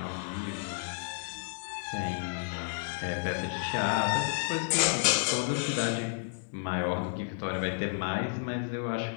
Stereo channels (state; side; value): silent; right; digital silence